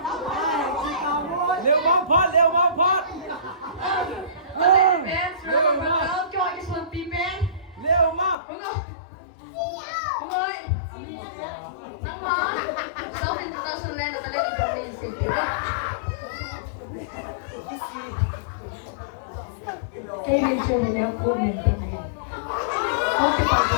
Leo one pot. Leo ma. Kevin Choi dia pun minta. Kau kita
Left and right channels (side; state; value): right; drops out; at 8.3 s